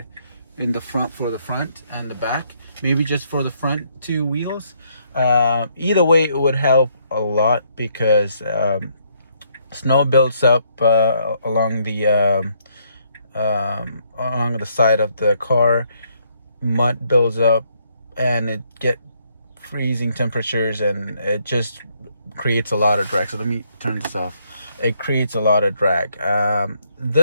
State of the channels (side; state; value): both; inverted; correlation -0.71